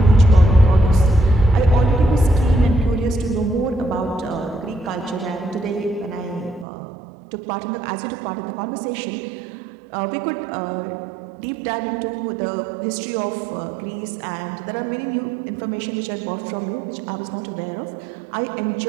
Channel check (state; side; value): drops out; left; at 6.7 s